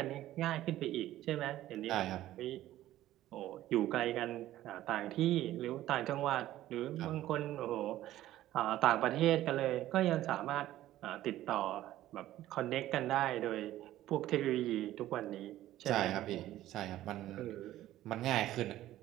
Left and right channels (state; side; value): quieter; left; 14.2 dB